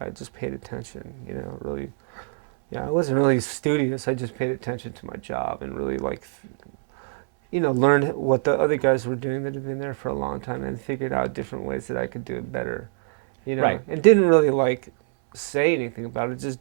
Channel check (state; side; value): silent; left; 62 dB below the other